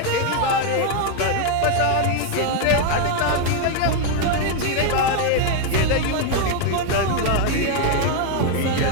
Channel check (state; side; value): different; both; correlation 0.01